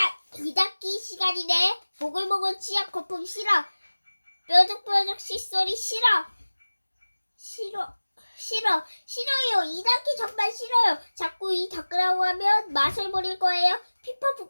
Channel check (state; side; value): inverted; both; correlation -1.00